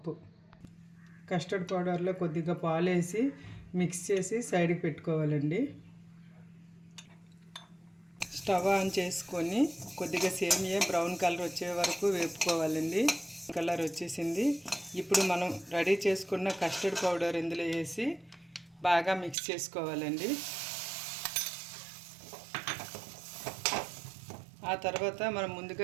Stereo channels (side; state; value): left; drops out; at 19.4 s